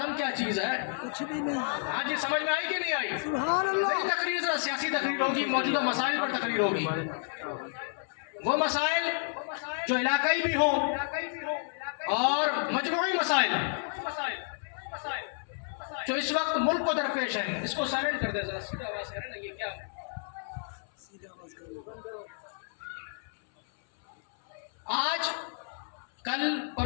کیا چیز ہے؟ کچھ بھی نہیں۔ ہاں جی، سمجھ میں آئی کہ نہیں آئی؟ سبحان اللہ۔ میری تقریر ذرا سیاسی تقریر ہوگی، موجودہ مسائل پر تقریر ہوگی، وہ مسائل جو علاقائی بھی ہوں اور مجموعی مسائل جو اس وقت ملک کو درپیش ہیں۔ اس کو سائلنٹ کر دیں ذرا، سیدھا آواز کریں نا، یہ کیا آج کل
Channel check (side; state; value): right; silent; 57 dB below the other